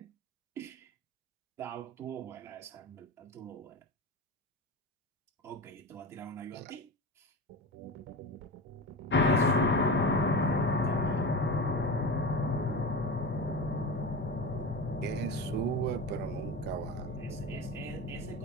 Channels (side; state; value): both; normal; correlation 0.27